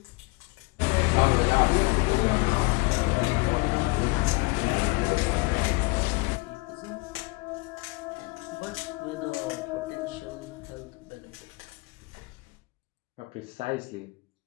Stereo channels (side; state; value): right; quieter; 27.0 dB